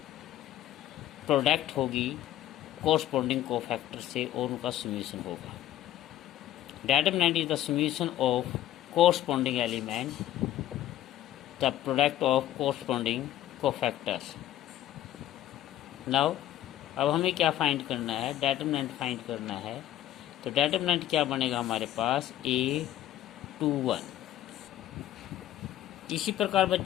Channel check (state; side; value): quieter; right; 13.0 dB